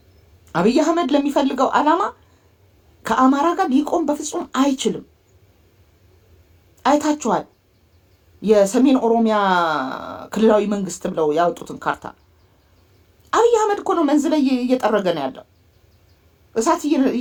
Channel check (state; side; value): identical; both; correlation 1.00